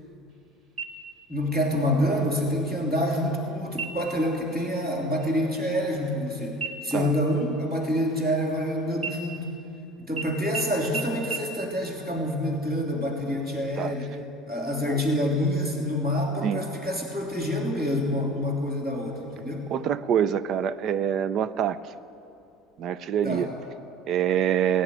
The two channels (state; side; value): normal; both; correlation 0.43